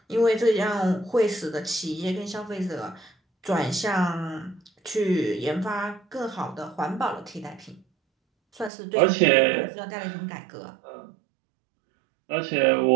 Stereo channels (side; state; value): left; drops out; at 8.7 s